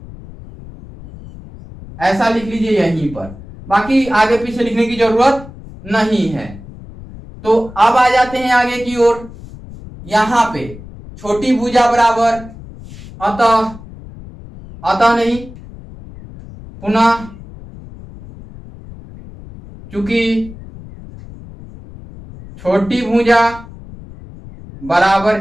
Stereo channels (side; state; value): left; noise; rumble, 16 dB below the sound